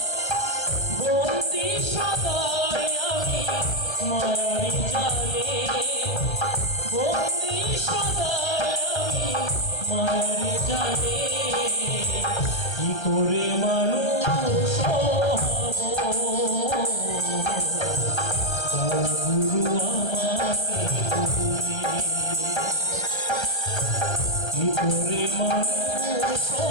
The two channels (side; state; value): right; late; 1.3 ms